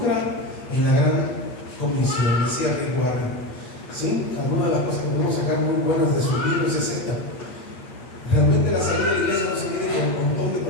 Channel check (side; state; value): right; late; 9.3 ms